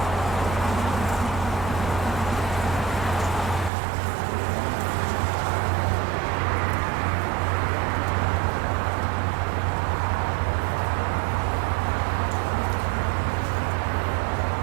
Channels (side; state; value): left; drops out; at 3.7 s